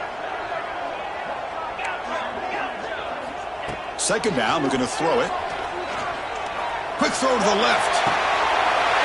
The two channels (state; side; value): identical; both; correlation 1.00